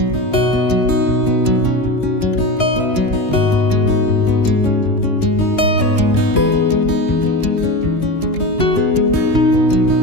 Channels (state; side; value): late; right; 2.9 ms